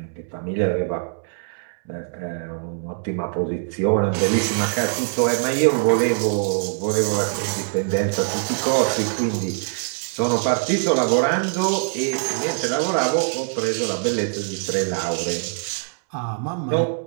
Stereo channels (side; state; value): left; silent; 64 dB below the other